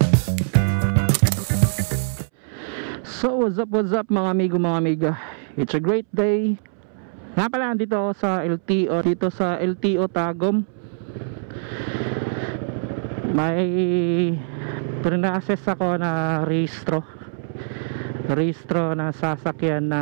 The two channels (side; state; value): left; silent; 63 dB below the other